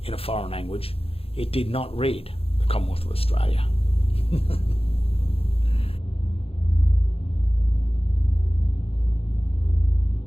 in a foreign language, it did not read the Commonwealth of Australia.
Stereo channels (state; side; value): late; right; 0.28 ms